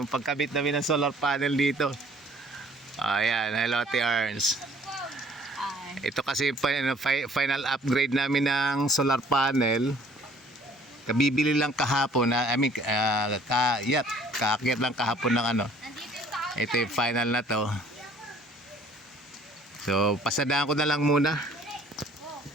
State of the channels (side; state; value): both; normal; correlation 0.56